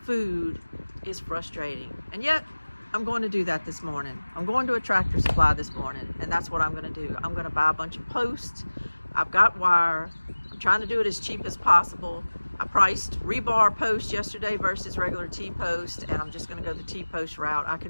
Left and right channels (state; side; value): inverted; both; correlation -1.00